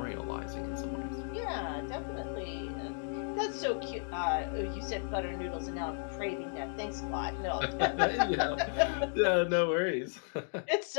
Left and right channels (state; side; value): silent; right; 55 dB below the other